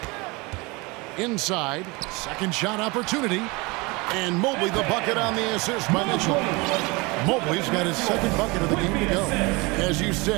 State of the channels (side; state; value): left; quieter; 25.7 dB